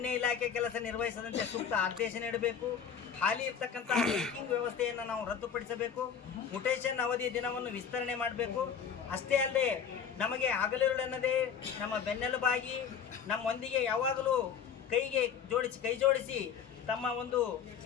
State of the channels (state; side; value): quieter; right; 7.4 dB